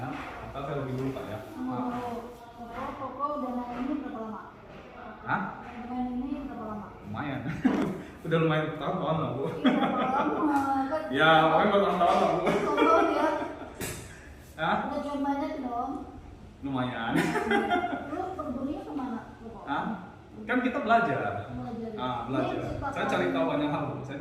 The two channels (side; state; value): both; identical; correlation 1.00